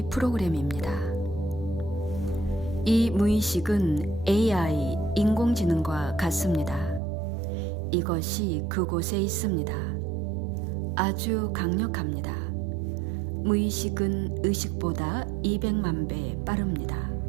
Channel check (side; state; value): left; drops out; at 7.0 s